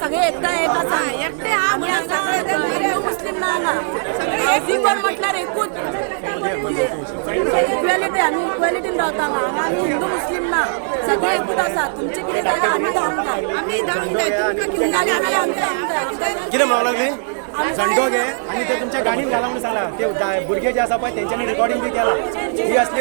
सगळे एकटा एक आसा आमी आसा हिंदू मुस्लिम ना हांगा एवरीवन म्हटल्यार एकूच इक्वेलिटी आमी इक्वेलिटीन रावता हांगा आमी हिंदू मुस्लिम ना सगळे एकूच आसा तुमचे कितें जालें आमी धांवूंक जाय कितें म्हणूंक लागली झंडो घे आणि ते तुमच्या गाणीन घाला म्हणून सांगला ते भुरगे जे आसा पळय तेंच्यांनी रिकॉर्डिंग बी केला ही असली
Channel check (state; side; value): silent; left; digital silence